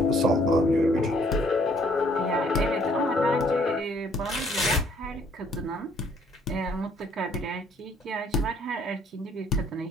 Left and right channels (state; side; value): normal; both; correlation 0.63